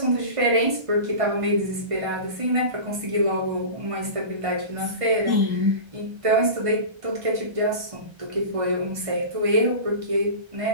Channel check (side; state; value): left; late; 1.3 ms